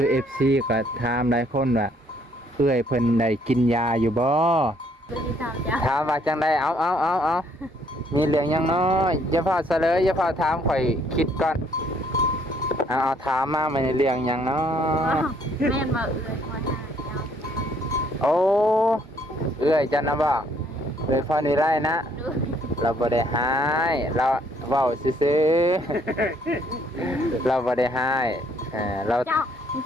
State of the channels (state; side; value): normal; both; correlation 0.65